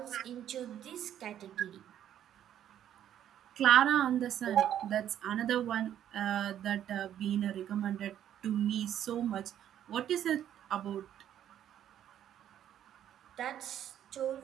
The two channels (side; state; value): left; quieter; 10.6 dB